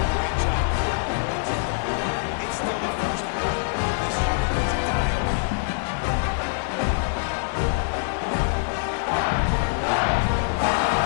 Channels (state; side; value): silent; right; digital silence